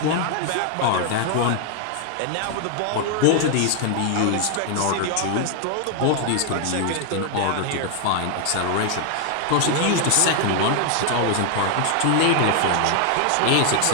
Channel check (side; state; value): both; different; correlation 0.00